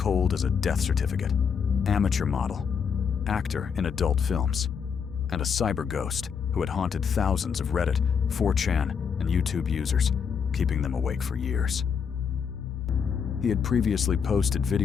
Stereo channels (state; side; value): quieter; right; 6.7 dB